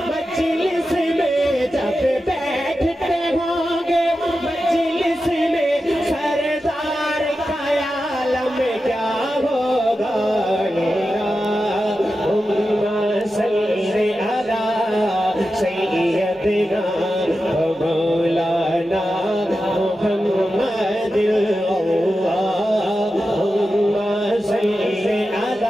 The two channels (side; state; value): both; normal; correlation 0.91